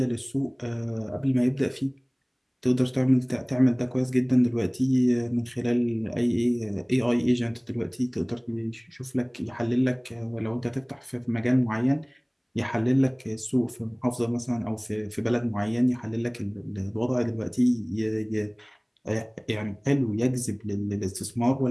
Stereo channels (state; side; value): identical; both; correlation 1.00